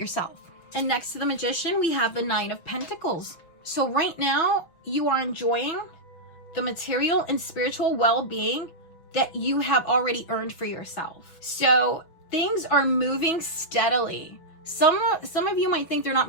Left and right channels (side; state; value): right; late; 6.1 ms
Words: And next to the Magician, we have the Nine of Pentacles. So right now, you are enjoying the material and spiritual well-being that you have already earned for yourself. So things are moving steadily. Some of you might think they're not